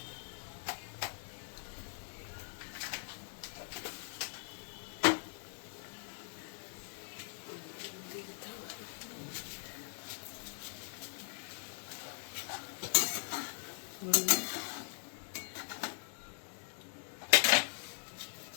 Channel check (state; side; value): silent; right; 51 dB below the other